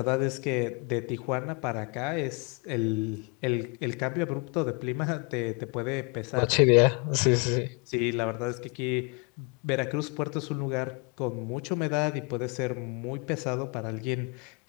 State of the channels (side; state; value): right; quieter; 29.9 dB